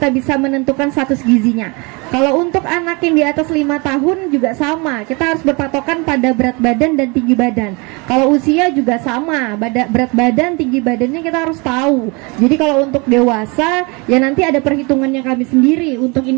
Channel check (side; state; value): left; quieter; 28.9 dB